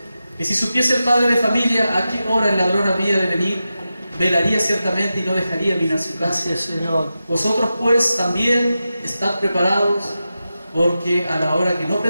que si supiese el padre de familia a qué hora el ladrón había de venir, velaría ciertamente y no dejaría minar su casa. Gracias, Señor. Vosotros pues también estad preparados, porque a la hora que no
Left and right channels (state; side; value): inverted; both; correlation -0.91